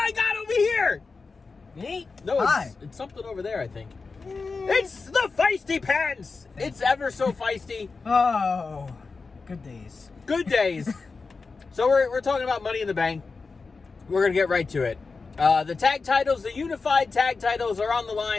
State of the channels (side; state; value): right; quieter; 4.3 dB